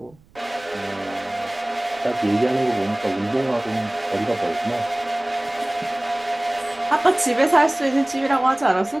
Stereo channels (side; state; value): right; noise; rumble, 30 dB below the sound